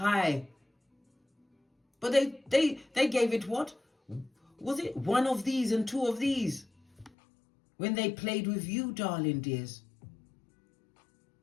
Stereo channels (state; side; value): drops out; right; at 7.1 s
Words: But they gave it what? Was it one of these and two of these? When they played with you, darling dears.